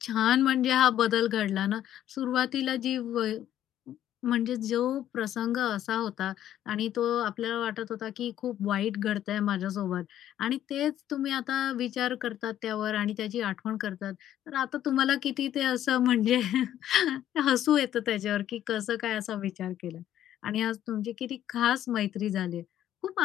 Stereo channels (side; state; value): right; quieter; 11.6 dB